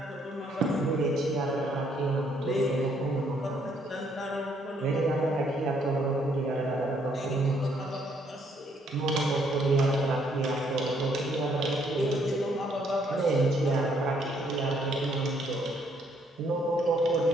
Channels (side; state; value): both; normal; correlation 0.69